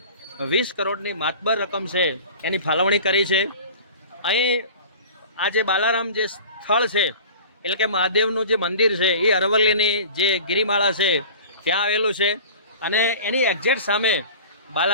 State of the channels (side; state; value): both; inverted; correlation -0.40